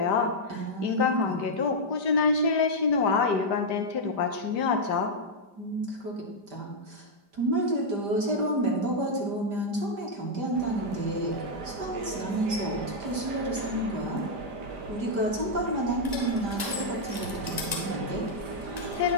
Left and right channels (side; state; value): left; late; 5.0 ms